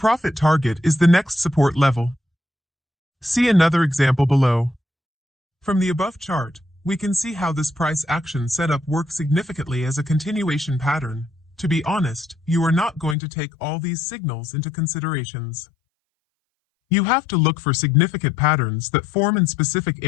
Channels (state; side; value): drops out; right; at 13.2 s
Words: target is the next support level. See another example below. From the above chart, we can see how this price action setup works significantly as a continuation pattern. To be honest, you are not going to take all these signals into considerations. You have to look for significant patterns that form in specific